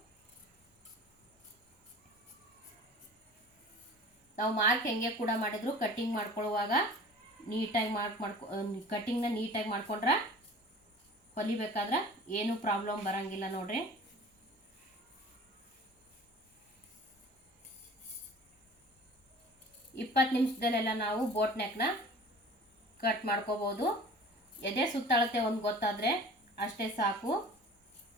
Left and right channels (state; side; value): normal; both; correlation 0.43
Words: ನಾವು ಮಾರ್ಕ್ ಹೆಂಗೆ ಕೂಡ ಮಾಡಿದ್ರು ಕಟ್ಟಿಂಗ್ ಮಾಡ್ಕೊಳ್ಳುವಾಗ ನೀಟಾಗಿ ಕಟ್ಟಿಂಗ್ನ ನೀಟಾಗಿ ಮಾಡ್ಕೊಂಡ್ರೆ ಹೊಲಿಬೇಕಾದ್ರೆ ಏನೂ ಪ್ರಾಬ್ಲಮ್ ಬರಂಗಿಲ್ಲ ನೋಡ್ರಿ. ಇಪ್ಪತ್ತು ನಿಮಿಷದಲ್ಲೆಲ್ಲ ನಾವು ಬೋಟ್ ನೆಕ್ನ ಕಟ್ ಮಾಡ್ಕೋಬೋದು. ಎದೆ ಸುತ್ತಳತೆ ಒಂದು ಗೊತ್ತಾದರೆ ಅಷ್ಟೇ ಸಾಕು.